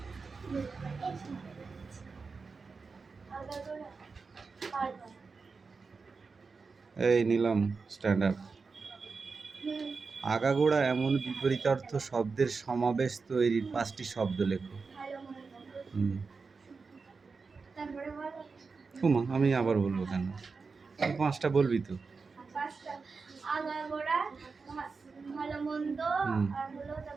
এই নিলাম স্ট্যান্ড আপ। আগাগোড়া এমন বিপরীতার্থ শব্দের সমাবেশ তৈরির 5টি শব্দ লেখো। ওমা আমি আবার বলবো কেন? তুই 5টা বলবি তো। আগাগোড়া, ভালো মন্দ, আর হলো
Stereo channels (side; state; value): left; quieter; 4.6 dB